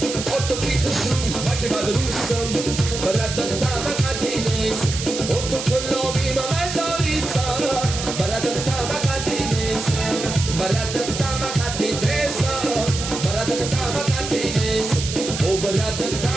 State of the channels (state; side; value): noise; right; hiss, 6 dB below the sound